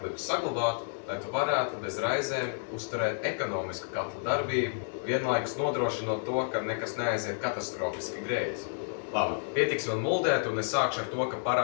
saglabāt, lai tu varētu bez raizēm uzturēt ekonomisku katlu darbību, vienlaikus nodrošinot to, ka nekas neaiziet katastrofiski greizi. Labi, pietiks man muldēt, un es sākšu ar to, ka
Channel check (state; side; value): silent; right; 57 dB below the other